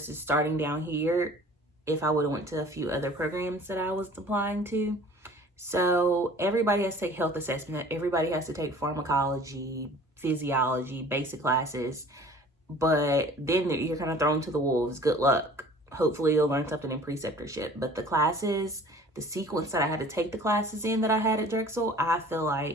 starting down here if I would have went to a few other programs that I was applying to. So everybody has to take health assessment. Everybody has to take pharmacology, physiology, basic classes. But then you're kind of thrown to the wolves. Good luck. Hopefully you'll learn something in preceptorship. But the classes, the sequence that I had to take the classes in that I had at Drexel, I feel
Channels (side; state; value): both; normal; correlation 0.48